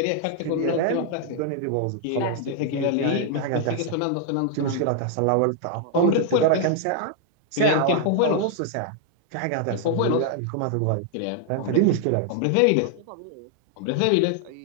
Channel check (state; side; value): different; both; correlation 0.00